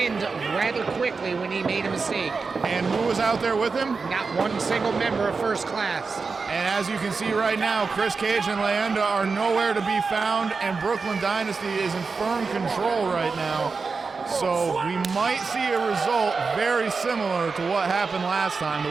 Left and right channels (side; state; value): left; quieter; 4.6 dB